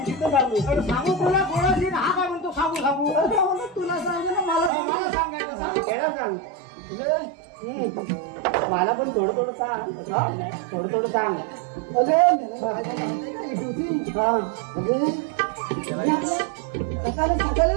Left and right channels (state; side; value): drops out; left; at 4.7 s